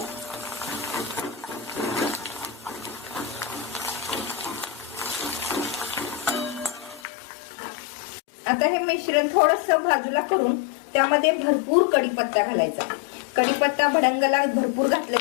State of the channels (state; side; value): drops out; right; at 7.0 s